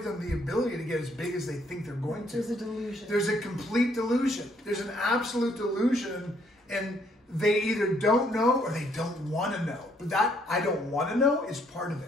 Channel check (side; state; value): both; normal; correlation 0.68